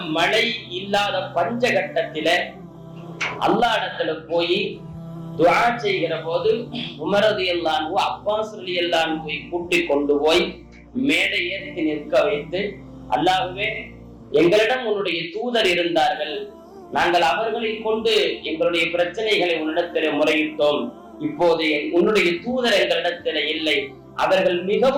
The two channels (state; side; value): identical; both; correlation 1.00